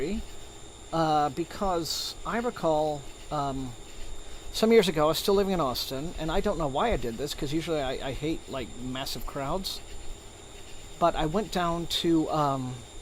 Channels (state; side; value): identical; both; correlation 1.00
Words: because I recall... some years ago, I was still living in Austin, and I don't know why I did this, because usually I hate, like, massive crowds. But I went down to,